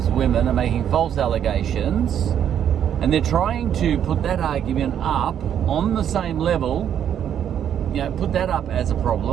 women are making false allegations, and they're trying to put that argument up on the same level, put that up as a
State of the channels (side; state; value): left; quieter; 9.4 dB